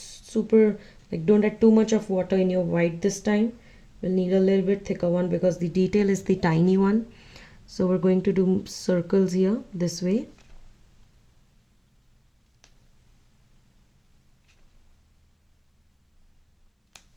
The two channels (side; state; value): both; identical; correlation 1.00